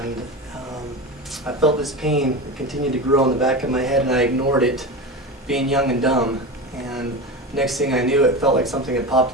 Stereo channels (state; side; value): normal; both; correlation 0.24